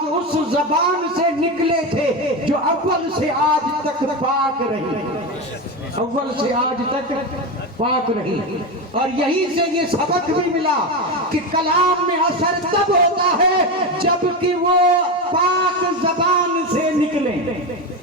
اس زبان سے نکلے تھے جو اول سے آج تک پاک رہی، اول سے آج تک پاک رہی. اور یہی سے یہ سبق بھی ملا کہ کلام میں اثر تب ہوتا ہے جب کہ وہ پاک زبان سے نکلے.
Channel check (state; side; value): normal; both; correlation 0.16